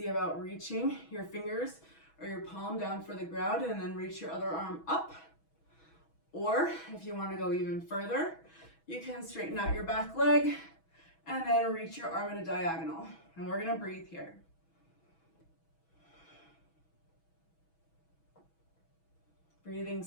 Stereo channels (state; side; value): late; right; 6.2 ms